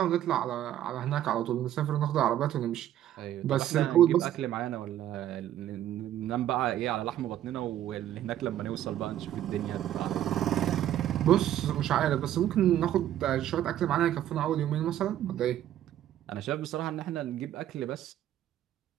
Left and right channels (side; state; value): left; quieter; 11.9 dB